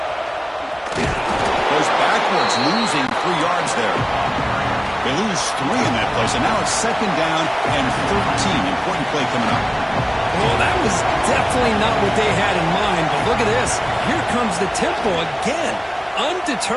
Goes backwards, losing 3 yards there. They lose 3 in that play, so now it's second down and 13. Important play coming up. Well, that was definitely not what they had in mind, but look at this. Here comes the tempo again.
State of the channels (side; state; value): both; identical; correlation 1.00